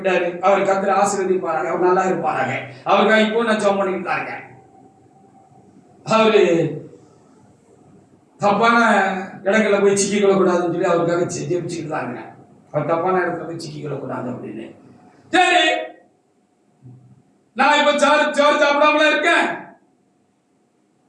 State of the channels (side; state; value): both; identical; correlation 1.00